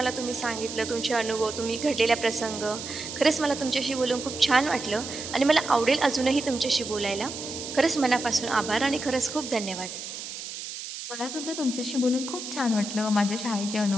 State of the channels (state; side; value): noise; right; hiss, 9 dB below the sound